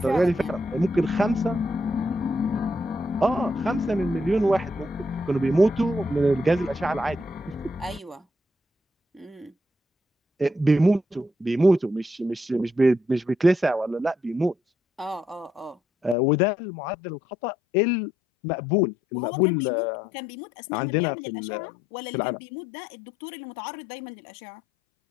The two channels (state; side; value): drops out; right; at 16.2 s